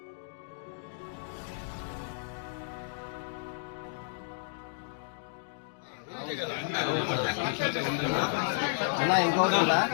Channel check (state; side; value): silent; right; digital silence